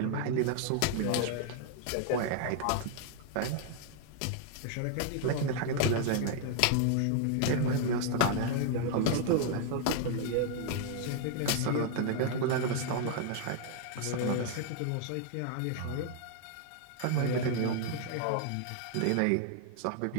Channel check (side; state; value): both; different; correlation 0.00